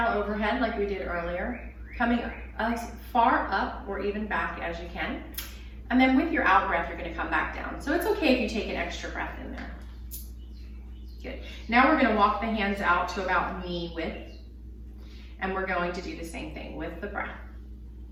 overhead like we did earlier, coming as far up or even back as you can. And then with your out breath, you're going to come back down. So it's okay if you take an extra breath in there. Good. Now we're going to walk the hands out to about knee width. And we're going to do the same thing with the breath.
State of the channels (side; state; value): both; identical; correlation 1.00